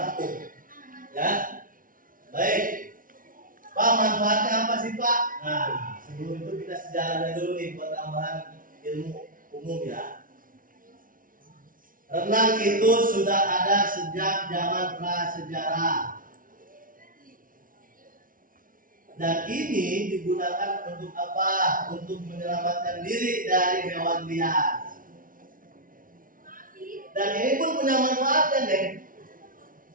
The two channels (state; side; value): late; left; 0.40 ms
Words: rapuh. Ya. Baik. Pak, manfaatnya apa sih, Pak? Nah, sebelum itu kita sejarahnya dulu nih buat tambahan ilmu umum ya. Renang itu sudah ada sejak zaman prasejarah. Dan ini digunakan untuk apa? Untuk menyelamatkan diri dari hewan liar. Dan ini pun punya manfaatnya, deh.